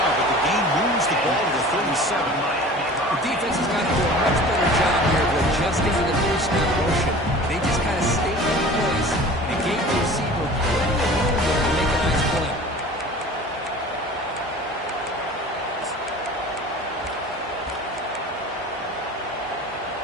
but the game moves the ball to the 37. The defense has got to do a much better job here of adjusting to the two-step motion. They just kind of stayed in place and gave the receiver plenty of room there to make a nice play.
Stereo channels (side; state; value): both; normal; correlation 0.41